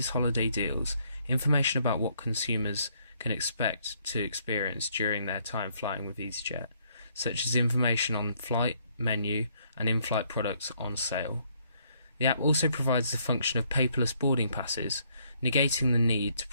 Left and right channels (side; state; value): both; inverted; correlation -0.69